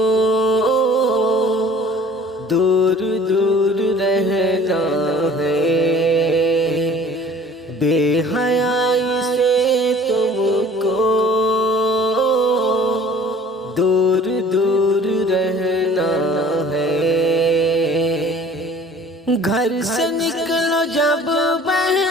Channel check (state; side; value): normal; both; correlation 0.49